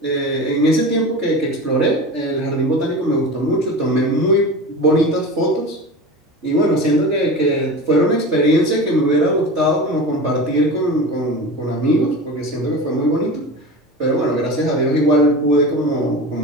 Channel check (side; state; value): both; normal; correlation 0.30